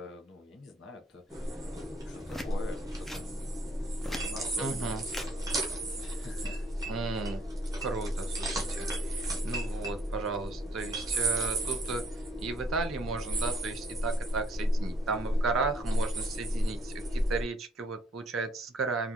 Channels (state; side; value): normal; both; correlation 0.64